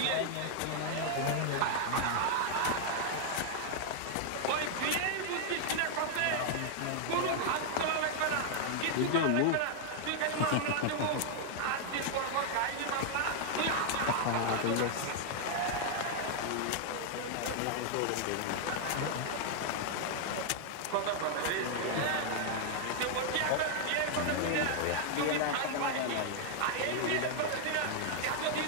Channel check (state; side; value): different; both; correlation 0.00